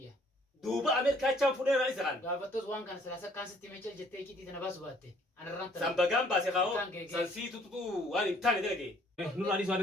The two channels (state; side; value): normal; both; correlation 0.61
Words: duba amerika chan fudu ra isaran قابتوز وان كان سلاسة كان ستي ميجل جتة كي تنباس باتة أنا رانت sambagan base khawo sansi tu wani tane delege nur ali sawade